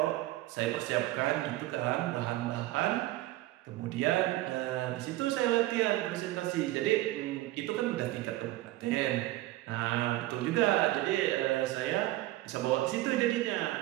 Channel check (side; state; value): left; quieter; 16.9 dB